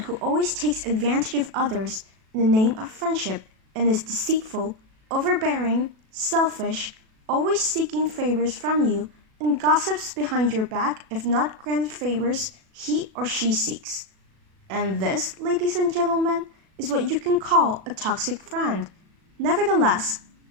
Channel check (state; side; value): late; left; 37 ms